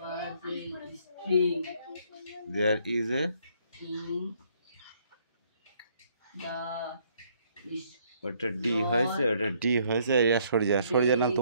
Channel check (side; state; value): both; inverted; correlation -0.67